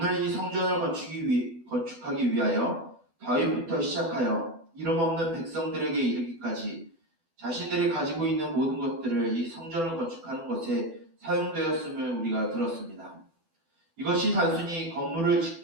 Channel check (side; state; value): left; late; 12 ms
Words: 이 성전을 건축하기 위하여 다윗부터 시작하여 이름 없는 백성들에게 이르기까지 자신들이 가지고 있는 모든 것들을 이 성전을 건축하는 것에 사용되었음을 우리가 들었습니다. 이것이 단순히 건물을